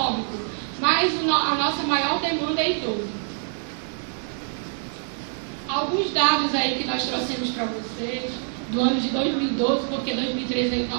mas a nossa maior demanda é idoso. Alguns dados aí que nós trouxemos para vocês, do ano de 2012, porque 2013 aí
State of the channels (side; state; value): left; silent; 59 dB below the other